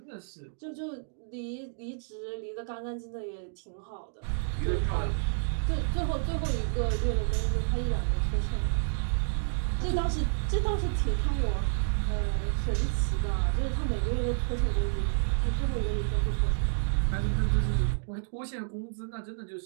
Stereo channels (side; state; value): left; silent; digital silence